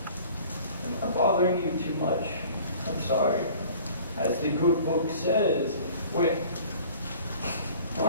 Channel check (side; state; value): both; inverted; correlation -0.48